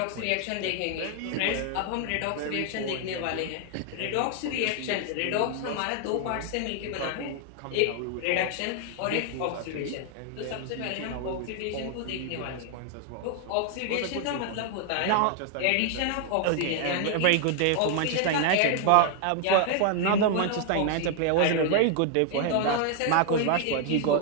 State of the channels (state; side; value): different; both; correlation 0.00